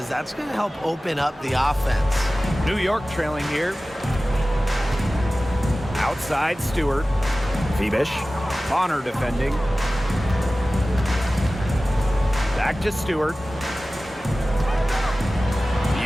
that's going to help open up the offense. New York trailing here. Outside Stewart. Phoebish. Bonner defending. Back to Stewart.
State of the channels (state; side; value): normal; both; correlation 0.96